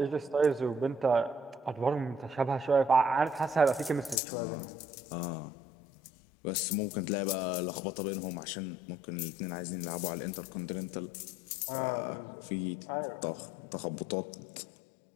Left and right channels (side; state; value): right; drops out; at 4.2 s